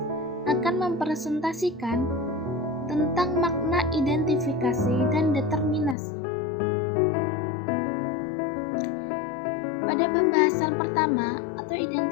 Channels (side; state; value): right; drops out; at 6.0 s